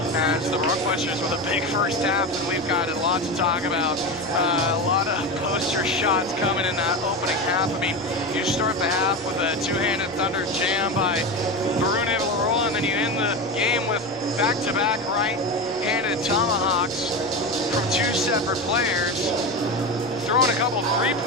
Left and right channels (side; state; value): both; normal; correlation 0.21